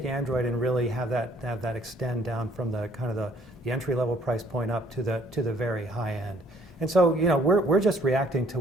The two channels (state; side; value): normal; both; correlation 0.61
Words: Android and really have that extend down from the kind of the entry-level price point up to the very high end. And so, we're just reacting to